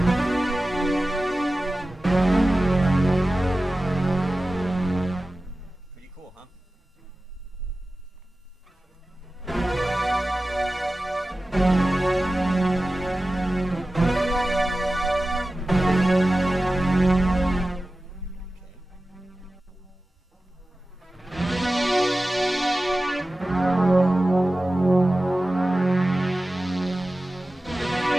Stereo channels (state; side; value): normal; both; correlation 0.95